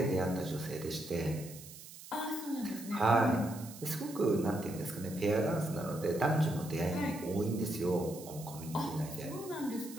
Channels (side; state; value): right; noise; hiss, 15 dB below the sound